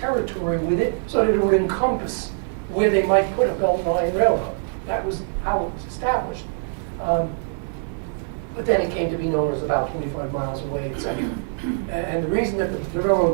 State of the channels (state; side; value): silent; left; digital silence